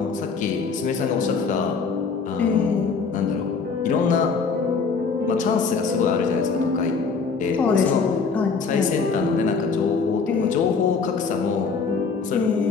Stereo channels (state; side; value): quieter; right; 5.0 dB